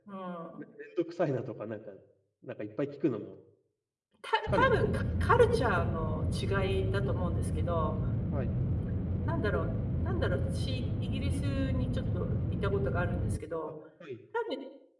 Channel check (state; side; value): identical; both; correlation 1.00